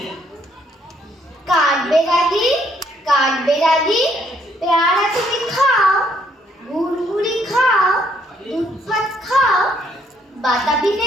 কাঠবেড়ালি, কাঠবেড়ালি, পেয়ারা তুমি খাও, গুড়গুড়ি খাও, দুধ ভাত খাও, বাতাবি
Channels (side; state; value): both; normal; correlation 0.69